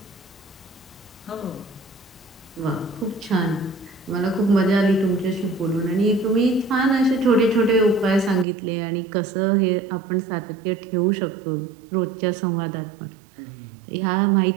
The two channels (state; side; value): drops out; left; at 8.5 s